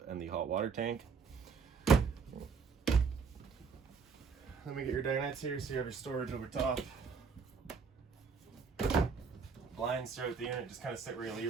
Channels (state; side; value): quieter; left; 5.5 dB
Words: and the hot water tank. Let me get your dinettes here so you have your storage over top. Blinds throughout the unit just kind of sit where you